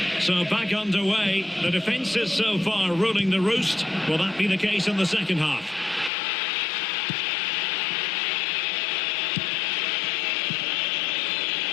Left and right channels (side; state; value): right; drops out; at 6.1 s